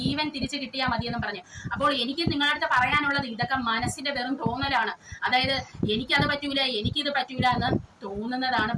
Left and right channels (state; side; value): identical; both; correlation 1.00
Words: തിരിച്ചു കിട്ടിയാൽ മതിയെന്ന് പറഞ്ഞു. അപ്പോൾ എനിക്ക് നിങ്ങളുടെ അടുത്ത് പറയാനുള്ളത്, ഇതൊക്കെ മനസ്സിന്റെ വെറും തോന്നലാണ്. അതായത് എനിക്കത് പറ്റൂല, എനിക്കിത് പറ്റൂല എന്ന് തോന്നുന്നതാണ്